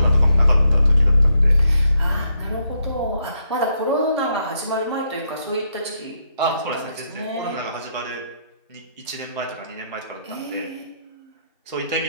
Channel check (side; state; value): both; inverted; correlation -0.77